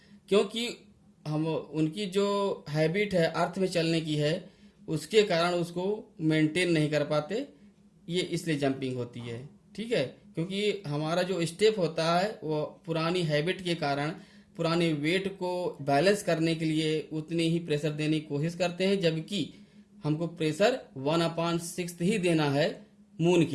क्योंकि हम उनकी जो हैबिट है अर्थ में चलने की है, उसके कारण उसको मेंटेन नहीं कर पाते, ये इसलिए जंपिंग होती है। ठीक है, क्योंकि हमारा जो स्टेप होता है वो पुरानी हैबिट के कारण पुराने वेट को बैलेंस करने के लिए उतनी ही प्रेशर देने की कोशिश करते हैं, जबकि हमको प्रेशर 1/6 ही देना है मून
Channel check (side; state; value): both; identical; correlation 1.00